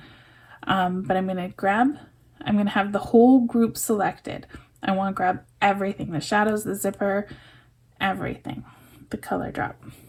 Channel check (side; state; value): both; identical; correlation 1.00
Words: But I'm gonna have the whole group selected. I wanna grab everything, the shadows, the zipper, everything, the color drop.